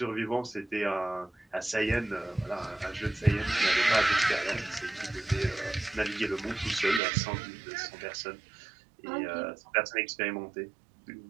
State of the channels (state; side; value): drops out; left; at 7.0 s